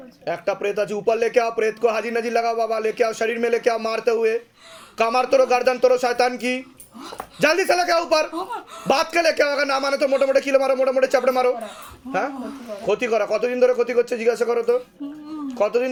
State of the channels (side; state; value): both; identical; correlation 1.00